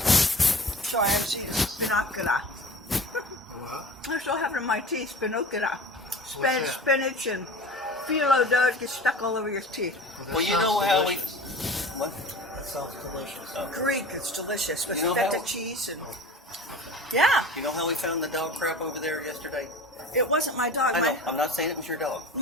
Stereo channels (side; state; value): both; normal; correlation 0.38